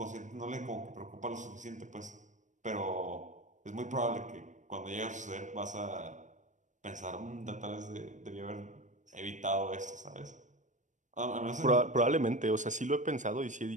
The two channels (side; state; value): left; late; 0.36 ms